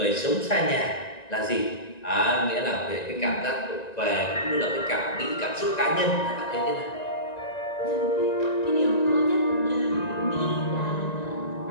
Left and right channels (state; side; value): late; right; 1.9 ms